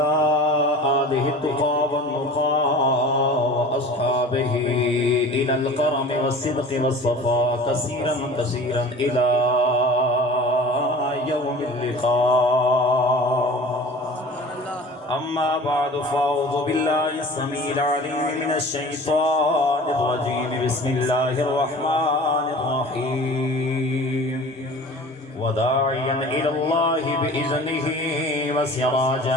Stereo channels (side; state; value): both; normal; correlation 0.41